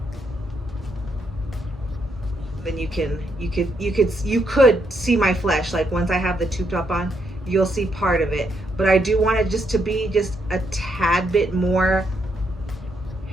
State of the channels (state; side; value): normal; both; correlation 0.77